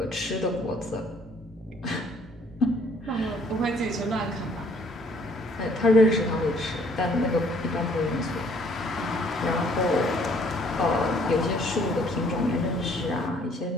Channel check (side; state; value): both; normal; correlation 0.60